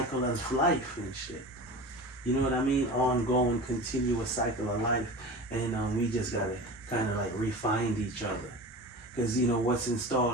of life and shit. You know what I mean? Ongoing, continuous cycle of life, and we just gotta kind of like refine each other, because what's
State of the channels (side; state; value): both; normal; correlation 0.32